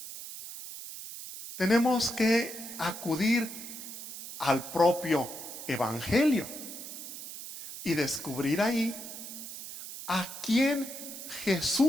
Tenemos que acudir al propio Evangelio y descubrir ahí a quién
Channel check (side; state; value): right; noise; hiss, 10 dB below the sound